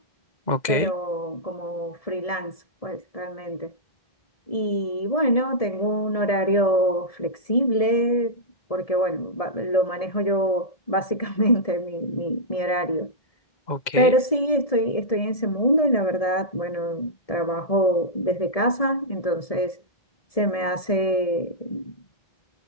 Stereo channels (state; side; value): late; right; 1.7 ms